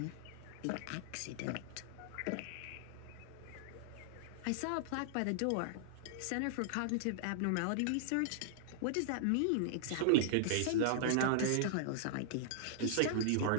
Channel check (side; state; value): both; different; correlation -0.01